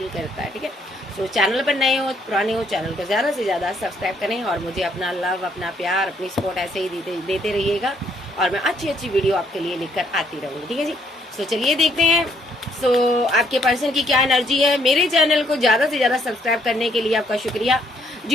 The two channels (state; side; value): normal; both; correlation 0.69